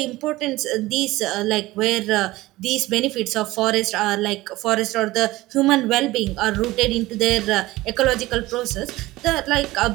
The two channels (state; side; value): quieter; left; 18.5 dB